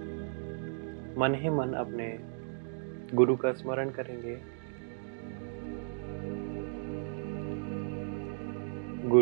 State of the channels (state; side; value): silent; left; digital silence